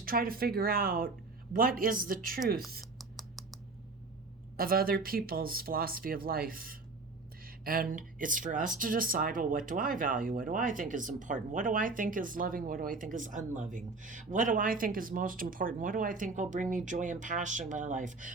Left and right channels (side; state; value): left; quieter; 3.7 dB